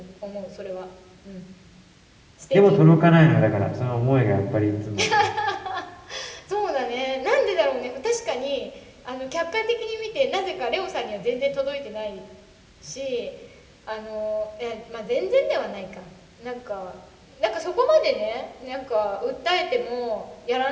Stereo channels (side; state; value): both; identical; correlation 1.00